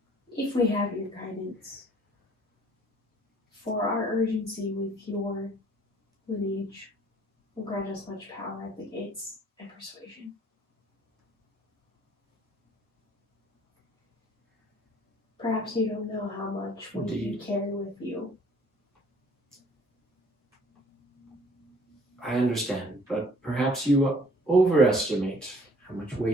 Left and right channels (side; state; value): both; normal; correlation 0.56